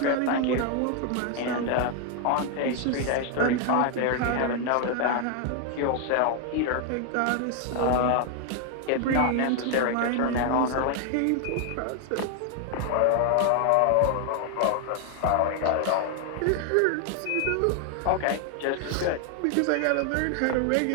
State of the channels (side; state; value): both; different; correlation 0.00